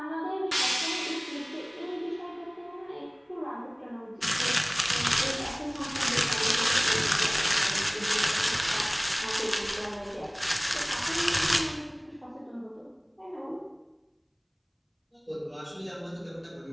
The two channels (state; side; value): identical; both; correlation 1.00